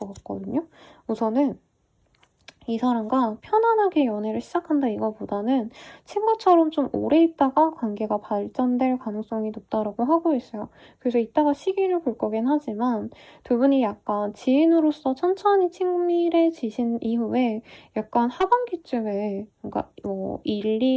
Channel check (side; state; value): both; identical; correlation 1.00